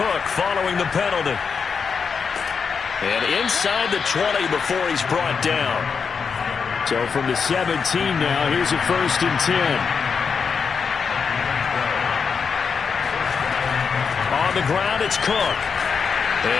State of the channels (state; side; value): quieter; right; 5.9 dB